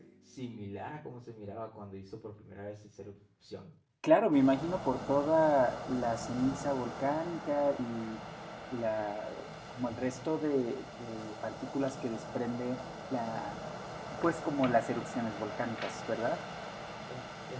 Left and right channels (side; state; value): both; identical; correlation 1.00